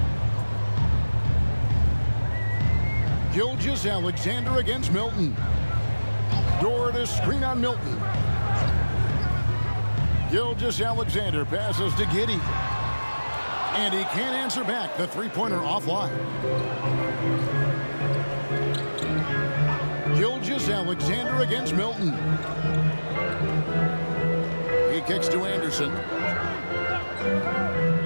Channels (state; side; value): inverted; both; correlation -1.00